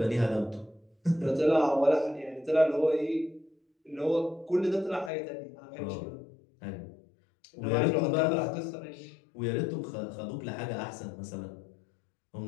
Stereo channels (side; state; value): right; drops out; at 5.1 s